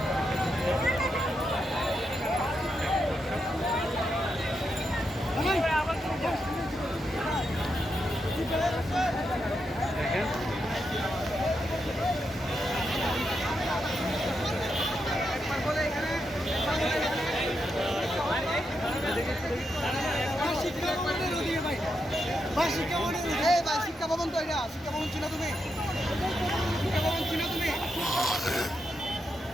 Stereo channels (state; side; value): normal; both; correlation 0.84